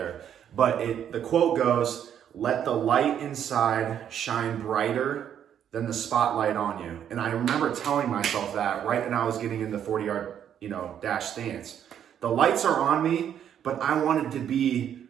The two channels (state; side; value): quieter; left; 9.4 dB